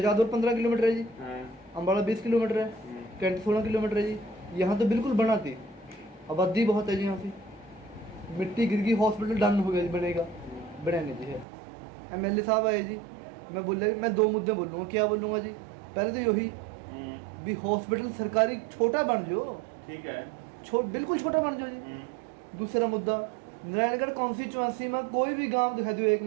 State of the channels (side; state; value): left; drops out; at 11.5 s